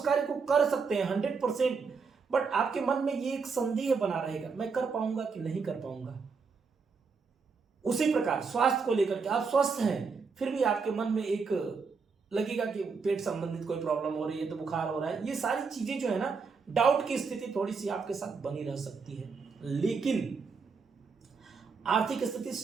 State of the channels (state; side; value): quieter; left; 5.1 dB